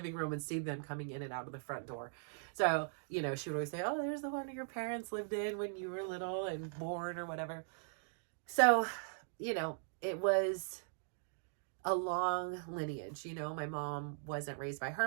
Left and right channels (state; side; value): silent; left; digital silence